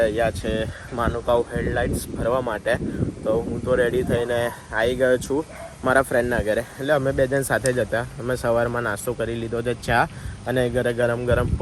છે માનુકાવ હેડલાઇટ્સ ભરવા માટે. તો હું તો રેડી થઈને આવી ગયો છું મારા ફ્રેન્ડના ઘરે. એટલે અમે બે જણ સાથે જ હતા. અમે સવારમાં નાસ્તો કરી લીધો છે, ચા અને ઘરે ગરમ ગરમ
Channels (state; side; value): identical; both; correlation 1.00